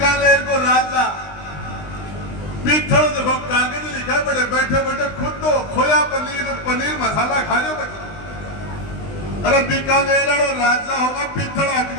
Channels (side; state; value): right; late; 20 ms